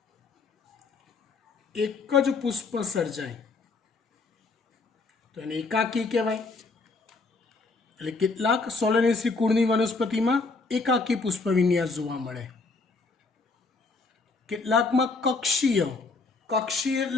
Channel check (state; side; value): quieter; right; 3.9 dB